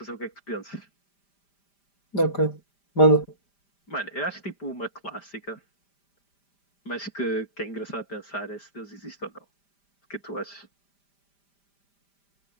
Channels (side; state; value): right; late; 5.0 ms